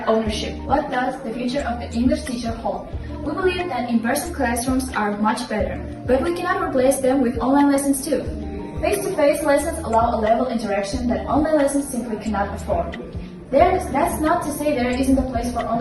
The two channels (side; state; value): both; identical; correlation 1.00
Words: ownership. What does the future of the English teacher hold? We believe that in-person classrooms are much better, but we cannot replace them with online lessons too. Face-to-face lessons allow a level interaction that online lessons simply cannot afford. That's not to say there isn't a place for